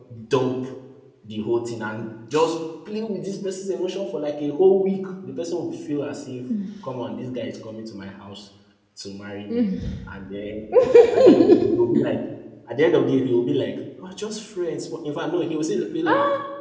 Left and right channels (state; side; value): identical; both; correlation 1.00